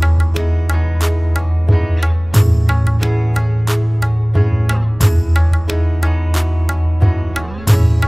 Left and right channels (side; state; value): right; noise; rumble, 19 dB below the sound